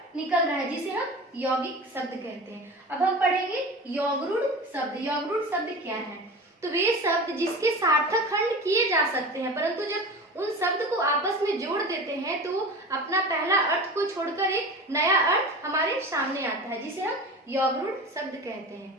निकल रहा है, जिसे हम यौगिक शब्द कहते हैं। अब हम पढ़ेंगे यौगरूढ़ शब्द। यौगरूढ़ शब्द क्या है? तो वे शब्द जिसके सार्थक खंड किए जा सकते हैं, परंतु जब उन शब्द को आपस में जोड़ देते हैं तो अपना पहला अर्थ को छोड़कर एक नया अर्थ हमारे सामने आता है, जिसे हम यौगरूढ़ शब्द कहते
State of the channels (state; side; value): normal; both; correlation 0.32